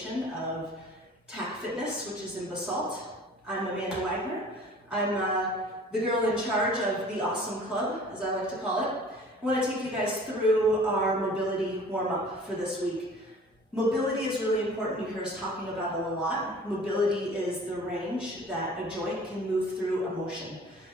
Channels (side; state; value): both; normal; correlation 0.47